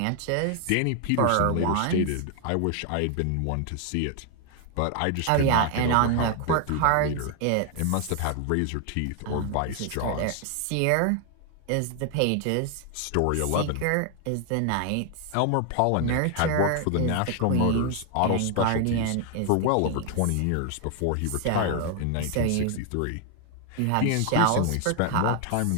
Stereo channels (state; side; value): different; both; correlation 0.00